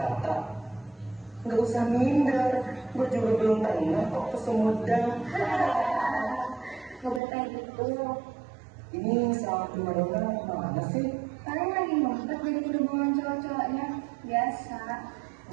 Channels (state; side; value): drops out; left; at 7.2 s